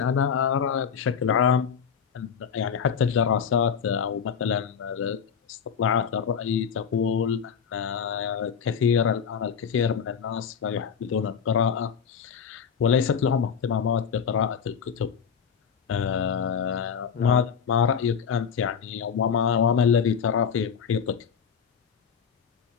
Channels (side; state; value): right; quieter; 7.1 dB